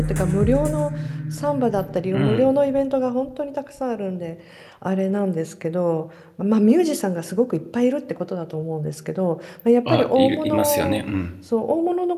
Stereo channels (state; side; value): identical; both; correlation 1.00